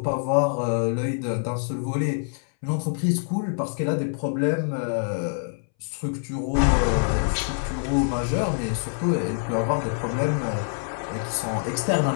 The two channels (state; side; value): silent; right; 62 dB below the other